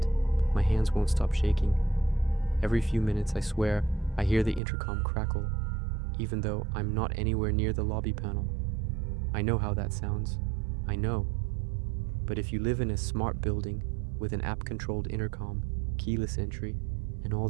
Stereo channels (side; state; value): left; drops out; at 4.6 s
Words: My hands won't stop shaking. Every few minutes, I swear, I hear the intercom crackle, even though I'm not anywhere near the lobby panel. I know how that sounds. I know. But if you live in a smart building with an app-controlled intercom, keyless entry, and all